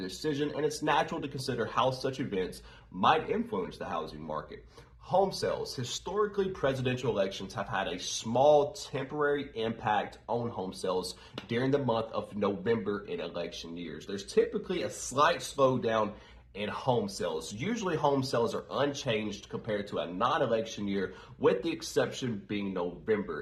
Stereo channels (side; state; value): both; identical; correlation 1.00